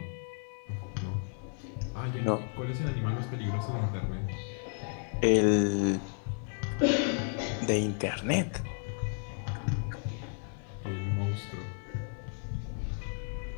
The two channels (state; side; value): silent; right; 56 dB below the other